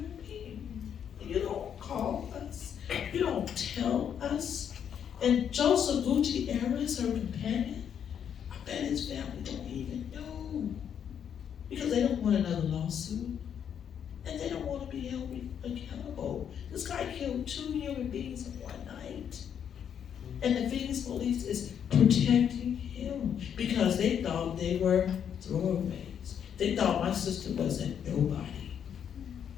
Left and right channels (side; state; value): right; quieter; 8.5 dB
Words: being. And you don't call us. You don't tell us. And Joseph Gutierrez, her companion, I bet his family don't even know. Because they don't want another lawsuit. And they don't want to be held accountable. This guy killed 2 human beings in one night. And the Phoenix police is protecting him because they thought they were throwaways. They thought my sister wasn't nobody.